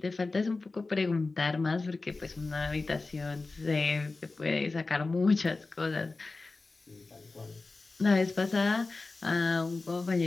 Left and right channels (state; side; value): quieter; right; 3.6 dB